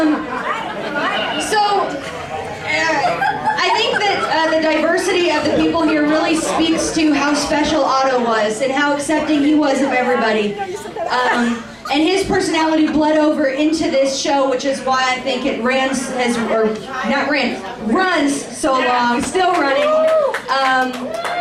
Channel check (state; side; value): identical; both; correlation 1.00